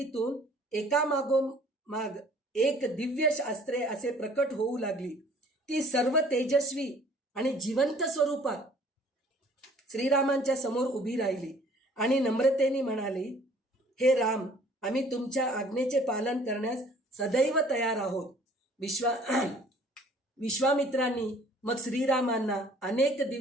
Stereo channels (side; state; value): both; normal; correlation 0.54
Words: एकामागोमाग एक दिव्य अस्त्रे असे प्रकट होऊ लागली. ती सर्व तेजस्वी आणि जिवंत स्वरूपात श्रीरामांच्या समोर उभी राहिली आणि नम्रतेने म्हणाली, हे राम, आम्ही तुमच्या आज्ञेचे पालन करण्यास सदैव तयार आहोत. विश्वामित्रांनी मग श्रीरामांना अनेक